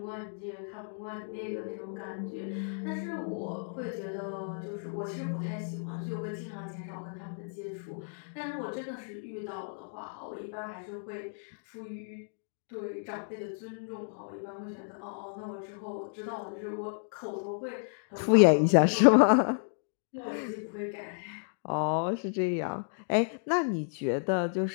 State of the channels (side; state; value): right; silent; digital silence